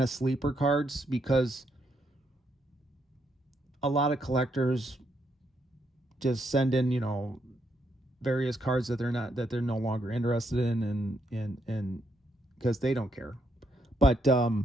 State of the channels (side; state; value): both; normal; correlation 0.77